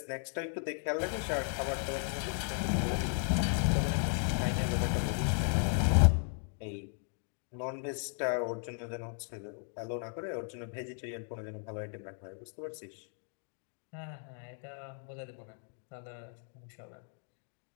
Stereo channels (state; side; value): silent; right; 54 dB below the other